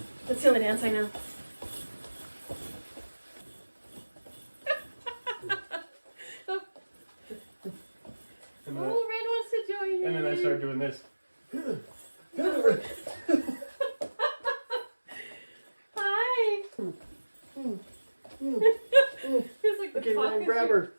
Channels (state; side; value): inverted; both; correlation -1.00